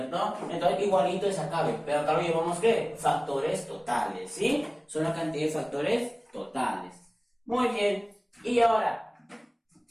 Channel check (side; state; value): both; identical; correlation 1.00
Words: Entonces igualito es acá, pero acá lo llevamos ¿qué? Factores totales, ¿sí? Son la cantidad de factores totales. Muy bien, y ahora,